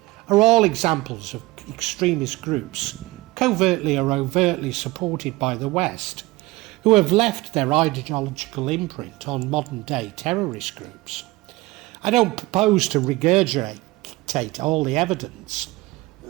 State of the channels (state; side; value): quieter; left; 20.1 dB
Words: are all examples of extremist groups, covertly or overtly supported by the West, who have left their ideological imprint on modern-day terrorist groups. I don't propose to regurgitate all the evidence,